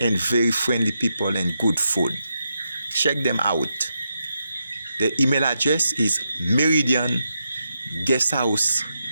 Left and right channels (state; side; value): inverted; both; correlation -0.84